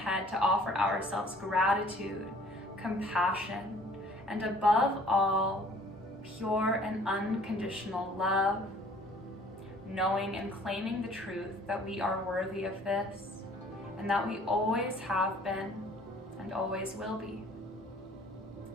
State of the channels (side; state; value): both; normal; correlation 0.54